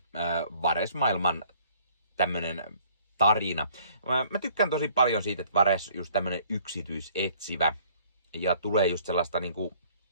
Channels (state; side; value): inverted; both; correlation -0.58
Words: Vares-maailman tämmönen tarina. Mä tykkään tosi paljon siitä, että Vares just tämmönen yksityisetsivä ja tulee just sellaista niinku,